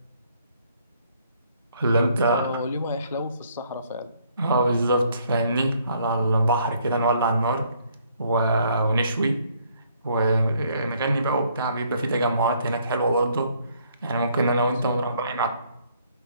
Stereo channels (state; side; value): inverted; both; correlation -0.66